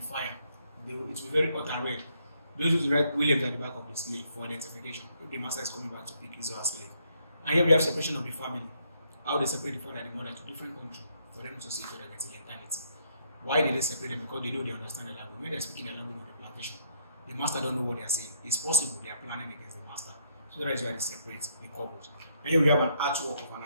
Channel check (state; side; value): inverted; both; correlation -0.72